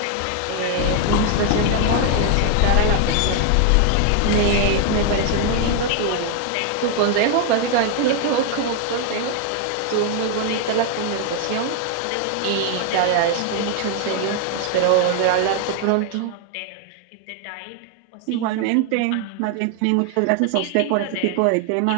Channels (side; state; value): both; different; correlation 0.00